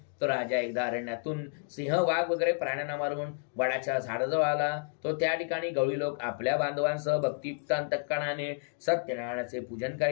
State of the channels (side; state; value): right; silent; digital silence